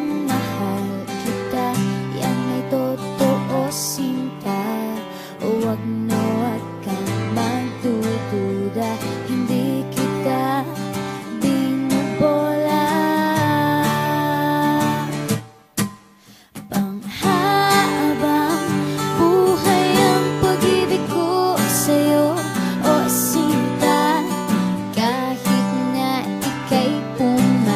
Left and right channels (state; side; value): identical; both; correlation 1.00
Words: mahal kita, yan ay totoo, sinta. Huwag na huwag kang magdududa, hindi kita binubola. Panghabang buhay ang pag-ibig ko sa'yo, o sinta. Kahit na ika'y